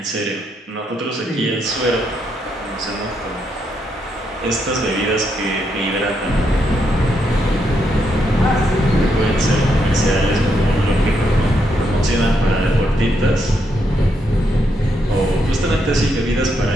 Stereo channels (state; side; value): normal; both; correlation 0.79